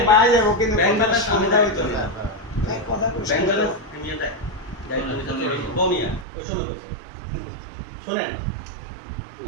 বাইরে যাবো কিন্তু ব্যাংকের কোনটা সামনে সুবিধা দায়িত্ব হইতো না। না কথা ব্যাংকের মিয়া দেয় দায়িত্ব নিতে চলে গেছে। বমিয়া ওই সময় কইছে শুনেন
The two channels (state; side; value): drops out; left; at 6.2 s